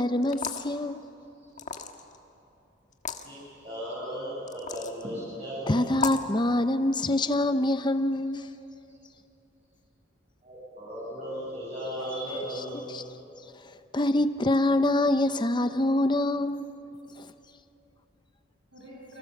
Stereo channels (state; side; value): normal; both; correlation 0.67